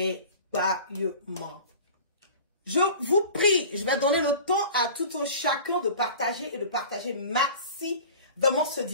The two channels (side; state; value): both; inverted; correlation -0.40